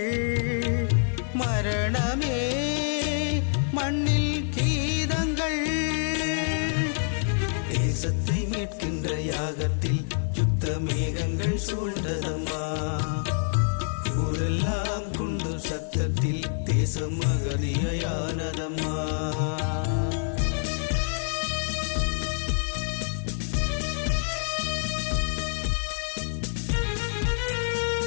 மரணமே மண்ணில் கீதங்கள் தேசத்தை மீட்கின்ற யாகத்தில் சுத்த மேகங்கள் சூழ்ந்ததம்மா ஊரெல்லாம் குண்டு சத்தத்தில் தேசம் அகதியானதம்மா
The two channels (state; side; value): silent; right; digital silence